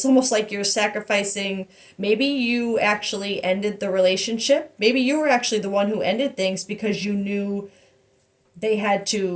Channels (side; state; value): both; identical; correlation 1.00